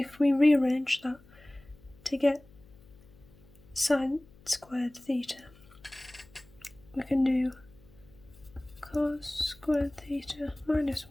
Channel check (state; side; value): noise; left; hum, 25 dB below the sound